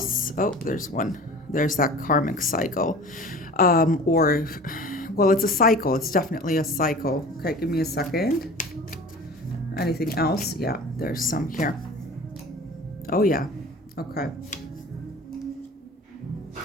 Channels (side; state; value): both; normal; correlation 0.40